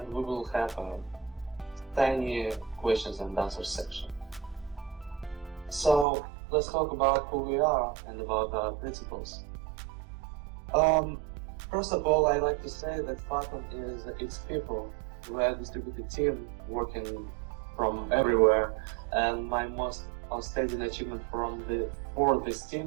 we will have a tiny questions and answers section. So let's talk about who we are and about our principles. First of all, I like to say that Fathom is its people. We are a distributed team working from everywhere, and my most outstanding achievement for this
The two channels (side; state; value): left; drops out; at 6.1 s